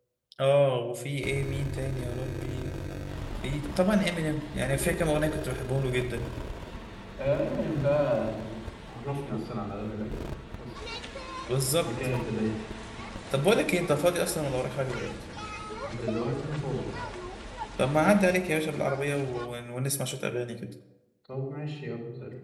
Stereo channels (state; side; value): identical; both; correlation 1.00